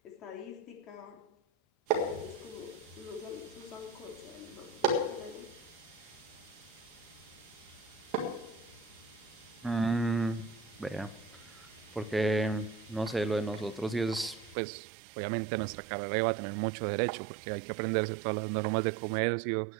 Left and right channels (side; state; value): left; drops out; at 14.6 s